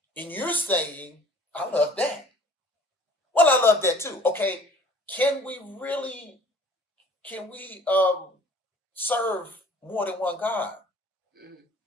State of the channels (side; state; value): both; normal; correlation 0.51